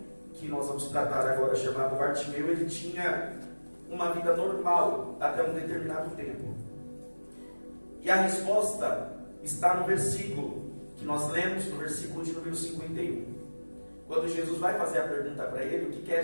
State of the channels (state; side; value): inverted; both; correlation -1.00